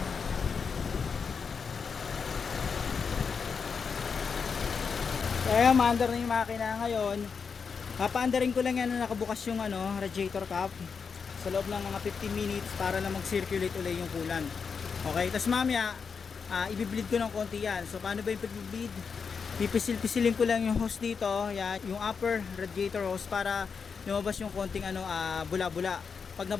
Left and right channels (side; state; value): right; quieter; 5.8 dB